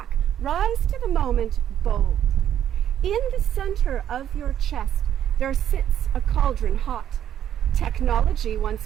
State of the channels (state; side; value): quieter; left; 10.4 dB